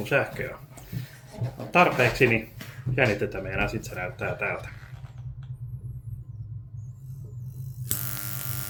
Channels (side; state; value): both; identical; correlation 1.00